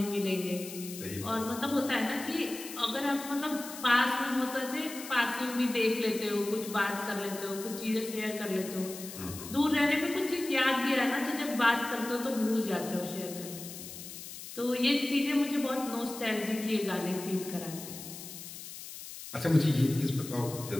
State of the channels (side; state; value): left; noise; hiss, 12 dB below the sound